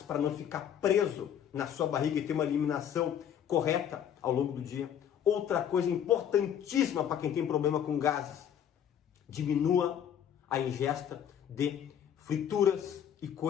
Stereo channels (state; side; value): quieter; right; 9.2 dB